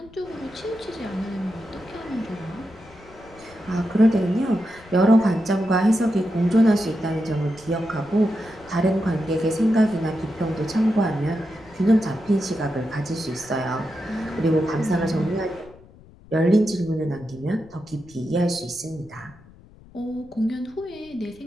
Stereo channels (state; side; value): noise; left; rumble, 23 dB below the sound